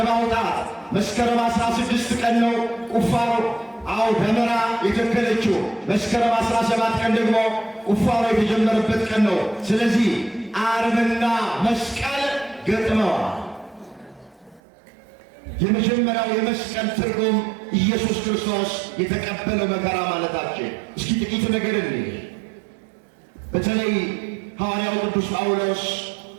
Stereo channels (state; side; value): drops out; left; at 14.6 s